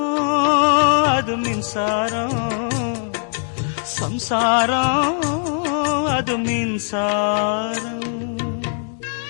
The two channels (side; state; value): right; silent; digital silence